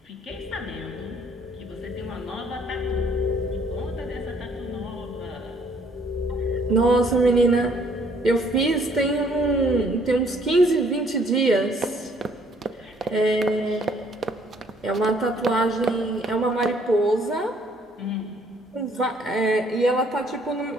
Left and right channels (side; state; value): both; normal; correlation 0.63